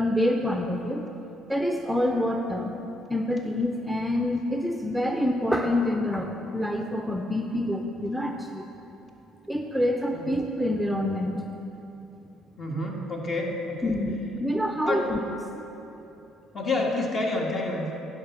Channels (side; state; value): both; normal; correlation 0.78